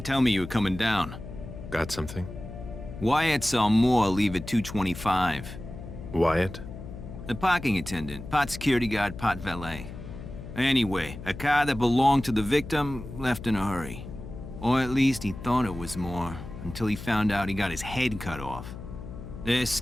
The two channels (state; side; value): noise; left; hum, 11 dB below the sound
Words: tell me you were coming down. Got something? Wyatt saw Moore leave at 2:25. Wyatt? The parking attendant, part security guard, part valet. Anyway, a car that belonged to the victim left in a hurry. Or at least he thought it was Moore, until he found out he got his head cut off. There's